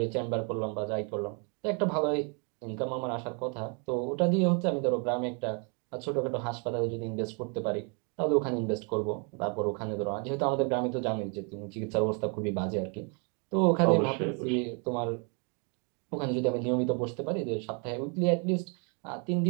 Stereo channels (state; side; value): quieter; left; 36.5 dB